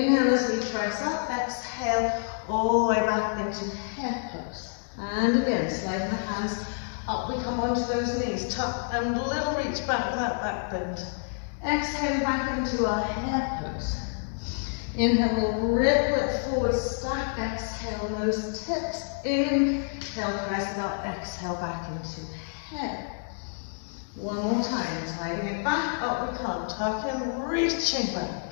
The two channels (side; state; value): right; silent; digital silence